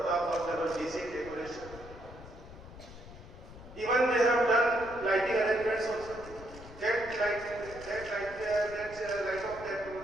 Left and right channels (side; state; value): left; noise; rumble, 16 dB below the sound